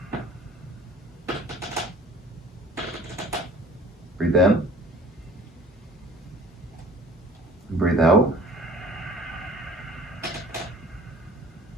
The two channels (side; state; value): both; normal; correlation 0.49